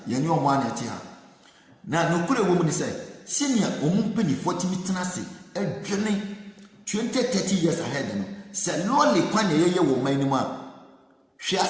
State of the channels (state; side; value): identical; both; correlation 1.00